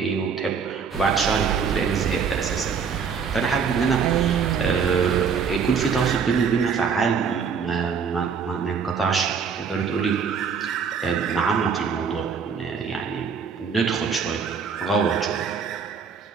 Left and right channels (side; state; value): left; quieter; 6.2 dB